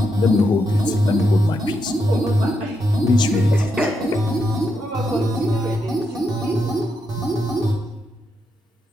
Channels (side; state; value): both; normal; correlation 0.82